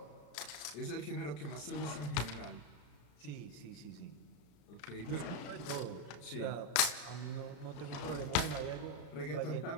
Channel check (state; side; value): late; right; 34 ms